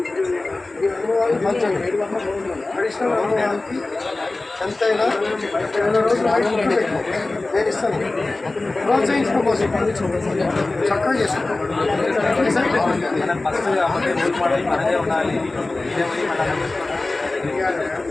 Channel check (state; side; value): quieter; right; 3.1 dB